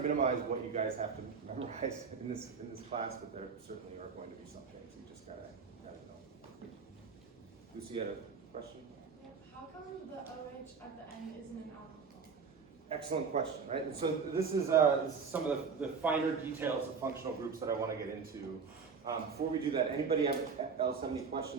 what you guys have to memorize in this class, but there certainly are going to be some things you just gotta know. Lucy had a question? How come the OH at the end isn't an alcohol? Excellent question, right? And so this is some of the finer details of functional groups that I want to get into. Before we do that, anybody else have any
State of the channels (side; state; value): left; quieter; 5.5 dB